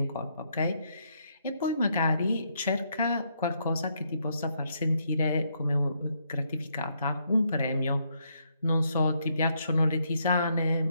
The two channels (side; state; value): both; inverted; correlation -0.75